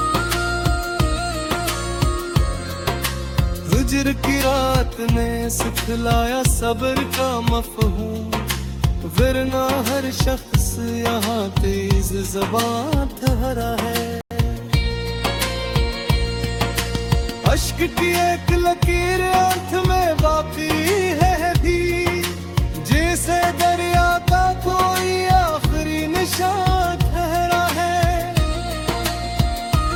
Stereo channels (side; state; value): both; identical; correlation 1.00